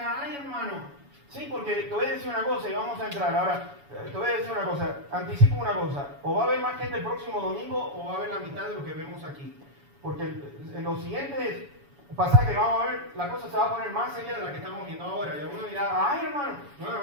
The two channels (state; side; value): late; left; 7.1 ms